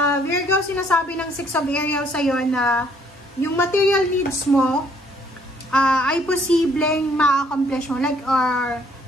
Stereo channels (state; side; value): normal; both; correlation 0.64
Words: Virgo, sinasabi ng 6 of Ariel sa'yo na yung material needs mo ay posibleng ma-accomplish mo, like, or